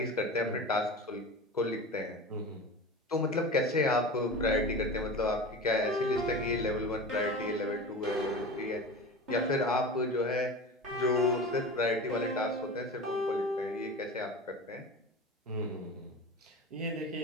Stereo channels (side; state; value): both; normal; correlation 0.31